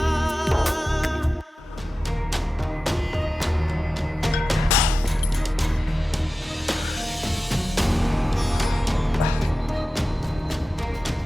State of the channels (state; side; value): normal; both; correlation 0.95